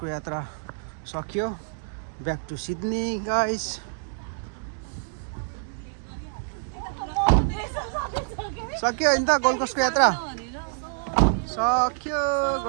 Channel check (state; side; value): silent; left; digital silence